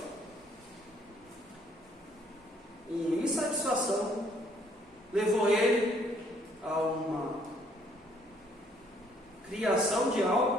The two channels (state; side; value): normal; both; correlation 0.65